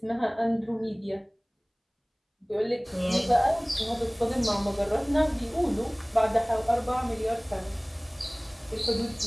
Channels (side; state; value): both; identical; correlation 1.00